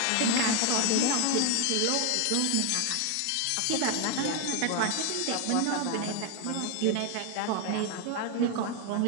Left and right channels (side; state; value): both; different; correlation 0.01